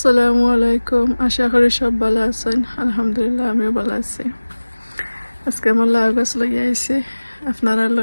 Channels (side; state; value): both; inverted; correlation -1.00